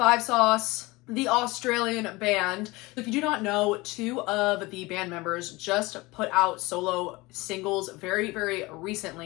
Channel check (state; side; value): quieter; right; 22.2 dB